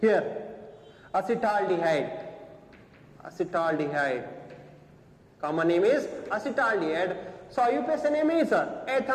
here acetaldehyde. Common name is acetaldehyde. So IUPAC name is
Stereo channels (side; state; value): both; identical; correlation 1.00